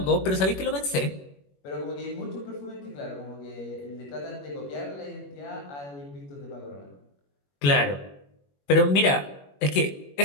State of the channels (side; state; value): right; late; 21 ms